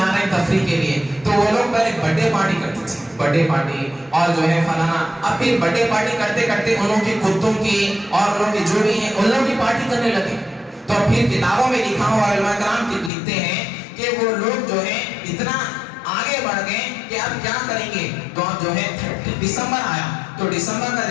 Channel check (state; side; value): drops out; right; at 13.1 s